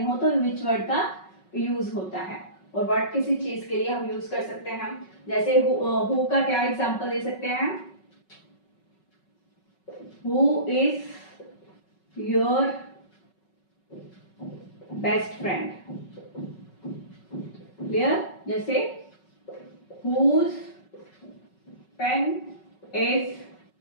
हो तो विच वर्ड का यूज होता है, और व्हाट किसी चीज के लिए हम यूज कर सकते हैं। जैसे हु का क्या एग्जांपल दे सकते हैं? Who is your best friend. Clear? जैसे हुज पेन इज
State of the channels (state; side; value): late; right; 5.4 ms